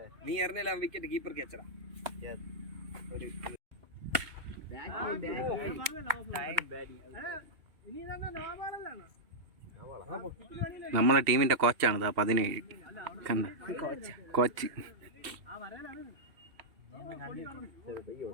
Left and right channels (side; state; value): left; late; 2.7 ms